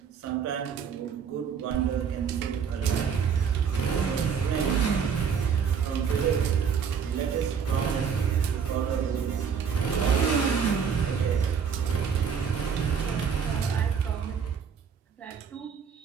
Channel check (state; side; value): quieter; left; 6.8 dB